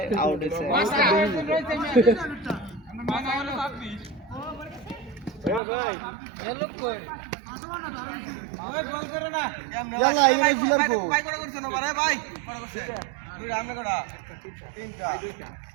আউট হইছে ইয়ালা ইনে ফিলার কো ভাই করে করছ না ভাই ভাই করে করছে তুই রামনে করা তিনটা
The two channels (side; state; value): left; drops out; at 5.6 s